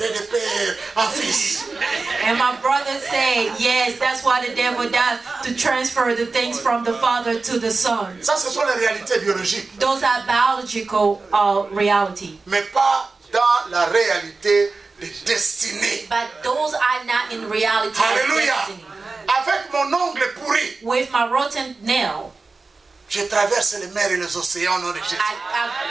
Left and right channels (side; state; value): left; quieter; 3.9 dB